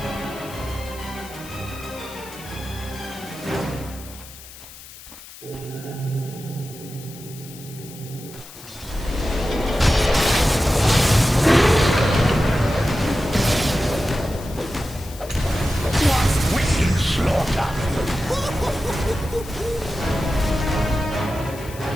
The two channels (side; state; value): left; noise; hiss, 17 dB below the sound